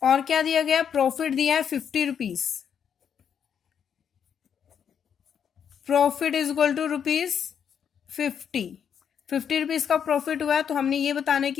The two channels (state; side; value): quieter; right; 7.9 dB